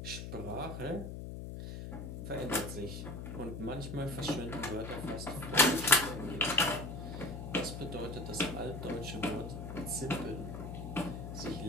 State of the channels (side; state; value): left; noise; hum, 7 dB below the sound